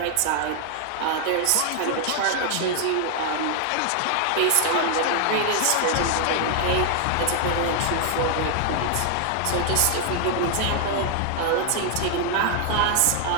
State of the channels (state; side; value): different; both; correlation 0.00